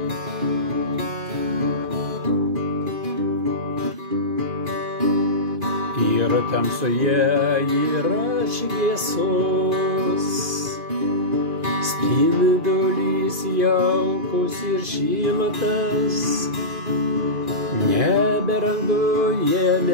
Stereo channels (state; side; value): late; left; 2.9 ms